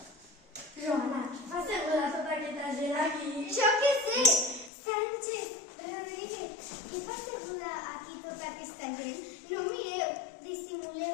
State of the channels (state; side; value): drops out; right; at 4.7 s